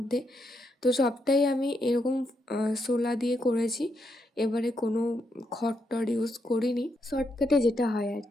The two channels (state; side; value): normal; both; correlation 0.80